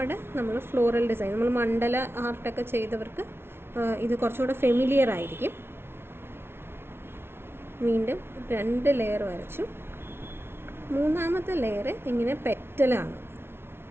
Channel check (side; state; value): left; late; 0.12 ms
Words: നമ്മൾ ഫ്ലോറൽ ഡിസൈൻ, നമ്മൾ മണ്ഡല ആർട്ടൊക്കെ ചെയ്തവർക്ക് ഇത് കുറച്ചുകൂടെ ഫെമിലിയർ ആയിരിക്കും. വീണ്ടും 2 ലെയർ വരച്ചു. മൂന്നാമത്തെ ലെയർ ഇങ്ങനെ പെറ്റലാണ്,